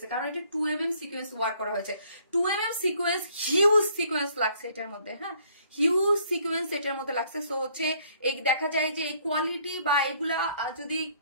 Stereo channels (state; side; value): inverted; both; correlation -0.63